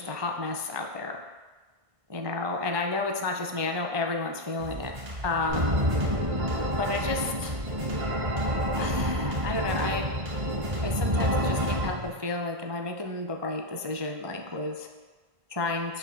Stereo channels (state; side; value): late; left; 1.2 ms